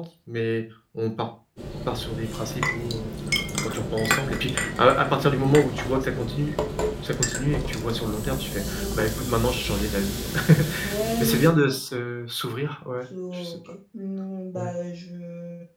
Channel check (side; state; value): both; identical; correlation 1.00